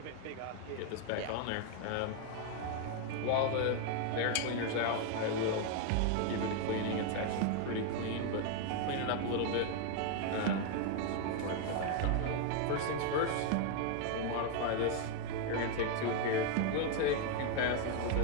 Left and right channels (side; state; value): both; different; correlation 0.01